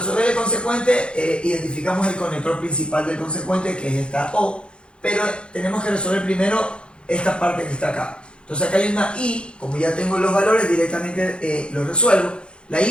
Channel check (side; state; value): right; late; 0.055 ms